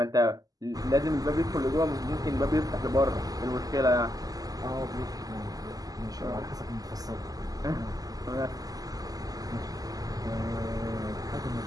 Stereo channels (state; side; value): late; left; 0.17 ms